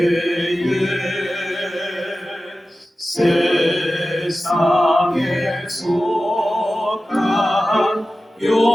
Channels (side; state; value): both; normal; correlation 0.94